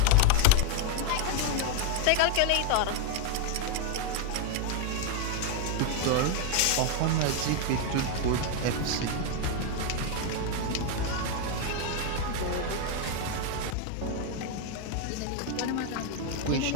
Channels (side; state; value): both; different; correlation 0.01